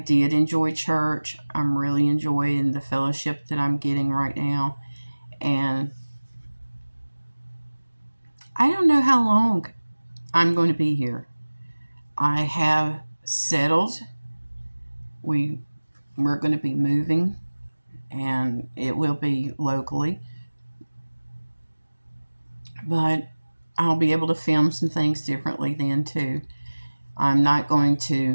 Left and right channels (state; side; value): inverted; both; correlation -1.00